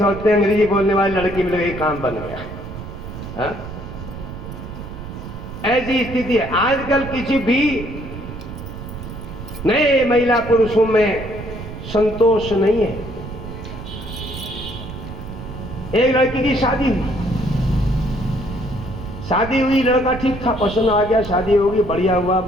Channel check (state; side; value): noise; right; rumble, 10 dB below the sound